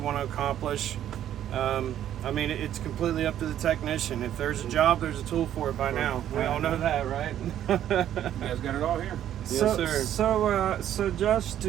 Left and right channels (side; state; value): left; quieter; 11.1 dB